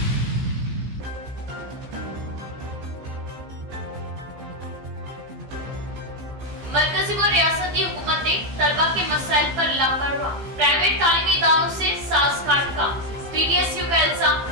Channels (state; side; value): late; left; 15 ms